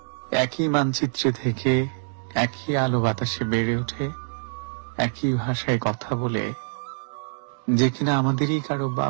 একই মানচিত্রে থেকে একই আলো বাতাসে বেড়ে ওঠে, একই ভাষায় কথা বলে যে কিনা আমাদেরই কারো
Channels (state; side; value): silent; left; digital silence